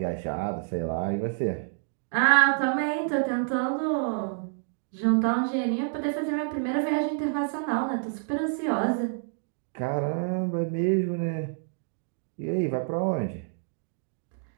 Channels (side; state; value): left; silent; 59 dB below the other